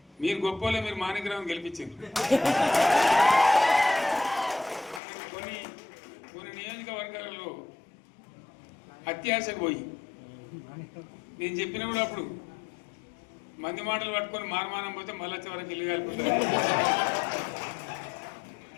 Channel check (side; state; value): right; drops out; at 5.0 s